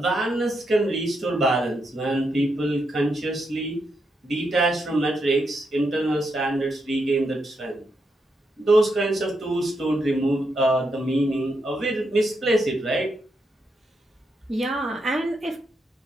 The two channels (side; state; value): both; normal; correlation 0.82